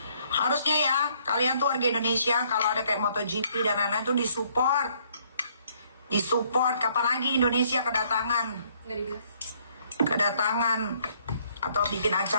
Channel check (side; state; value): both; inverted; correlation -0.66